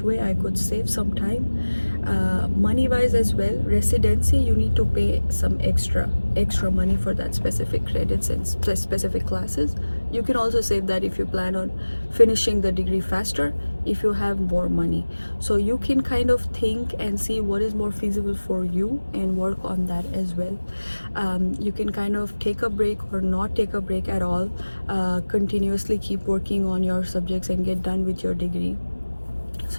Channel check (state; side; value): inverted; both; correlation -1.00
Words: way I could save some time, money wise as well. Residency, you need to pay some extra money for that specific credits and specific classes. You can also save that if you plan on finishing the degree faster, if you have more money. So you can kind of think and see what is more feasible for you and work on that as well. You can kind of take a break or not take a break at all, continuously keep working on your subjects and get done with your degree.